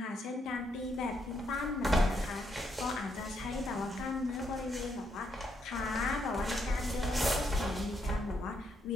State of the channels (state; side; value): normal; both; correlation 0.76